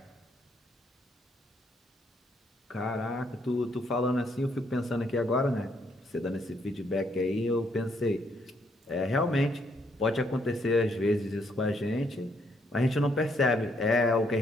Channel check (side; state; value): both; normal; correlation 0.72